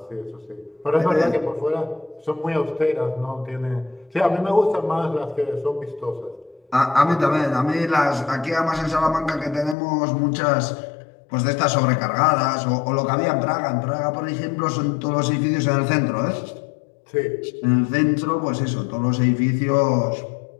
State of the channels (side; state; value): right; drops out; at 9.8 s